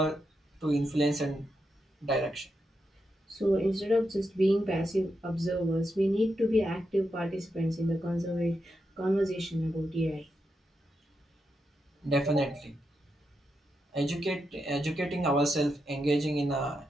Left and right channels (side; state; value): both; normal; correlation 0.85